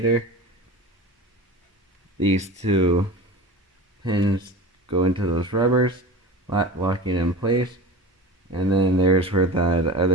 These two pins go into those rubbers, locking it in place. And then there's where the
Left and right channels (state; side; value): normal; both; correlation 0.33